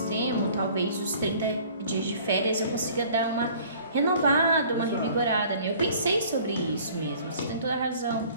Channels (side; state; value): both; inverted; correlation -0.52